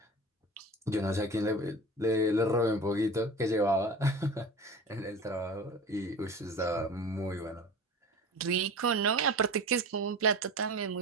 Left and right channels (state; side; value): normal; both; correlation 0.35